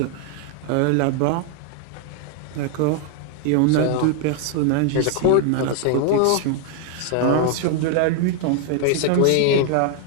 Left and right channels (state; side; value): different; both; correlation 0.00